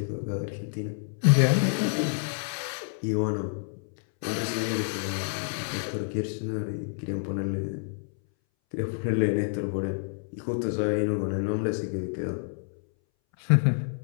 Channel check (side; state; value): right; silent; 59 dB below the other